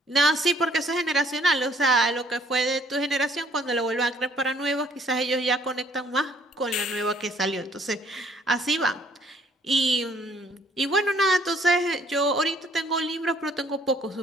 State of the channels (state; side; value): normal; both; correlation 0.62